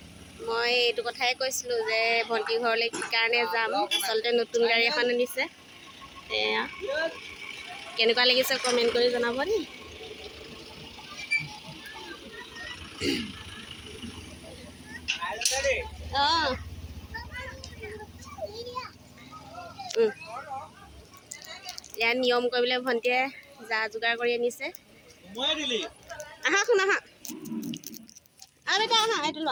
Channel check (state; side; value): identical; both; correlation 1.00